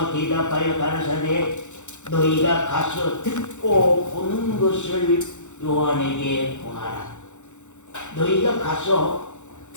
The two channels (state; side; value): late; right; 0.84 ms